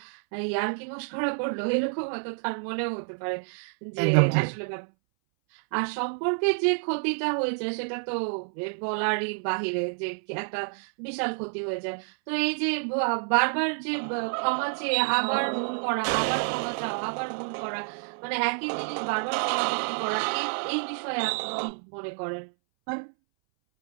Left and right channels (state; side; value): silent; left; 59 dB below the other